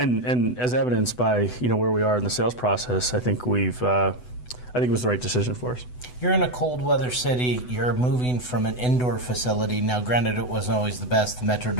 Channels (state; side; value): late; right; 8.0 ms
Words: as evidenced by where we are in the sales process, I think it was the right decision for us. You're in a cold weather city. You're moving from an indoor facility. Now, granted, it wasn't always the best. The